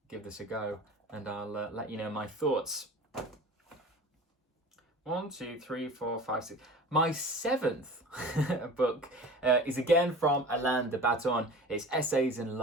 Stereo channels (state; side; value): normal; both; correlation 0.39